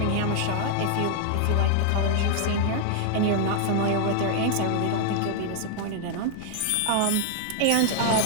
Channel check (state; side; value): different; both; correlation 0.00